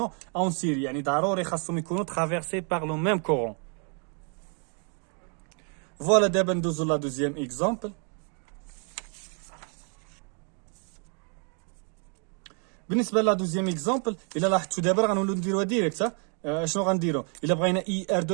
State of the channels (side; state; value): left; quieter; 39.6 dB